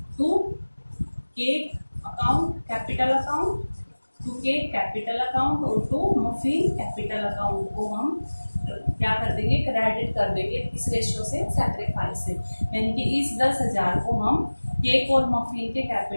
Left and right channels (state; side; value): inverted; both; correlation -1.00